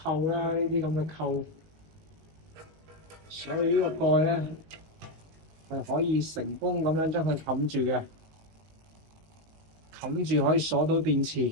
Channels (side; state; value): left; late; 19 ms